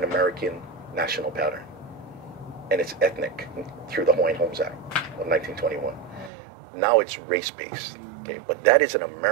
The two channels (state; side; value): drops out; left; at 6.3 s